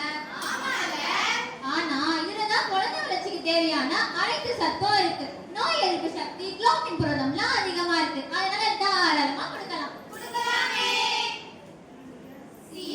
ஆனா இதுலதான் குழந்தை வளர்ச்சிக்கு தேவையான அனைத்து சத்தும் இருக்கு. நோய் எதிர்ப்பு சக்தி, குளோபின் புரதம்லாம் அதிகமா இருக்கு. அதனால தாராளமா கொடுக்கலாம்.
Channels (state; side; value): identical; both; correlation 1.00